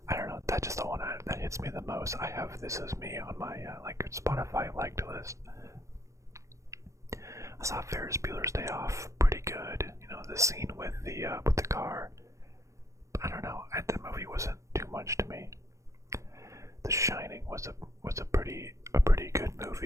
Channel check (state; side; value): late; left; 0.15 ms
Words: I don't know, that's just the one that hits me the most. I have This Is Me on my, like, Spotify liked list. I saw Ferris Bueller's Day Off, pretty good. The scene with the car. I don't know, that movie wasn't too much to me. The Shining was a pretty good